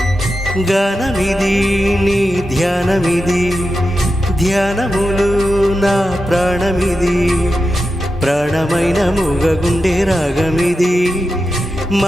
గానమిది నీ ధ్యానమిది ధ్యానములు నా ప్రాణమిది ప్రాణమైన మూగగుండె రాగమిది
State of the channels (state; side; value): normal; both; correlation 0.90